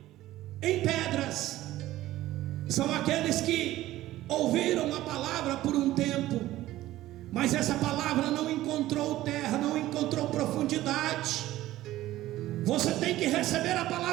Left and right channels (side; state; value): left; quieter; 15.4 dB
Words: em pedras são aqueles que ouviram a palavra por um tempo, mas essa palavra não encontrou terra, não encontrou profundidade. Você tem que receber a